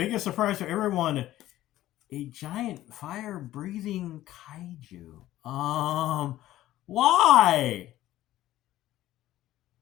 surprise for everyone, a giant fire-breathing kaiju. Why?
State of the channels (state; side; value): quieter; right; 14.6 dB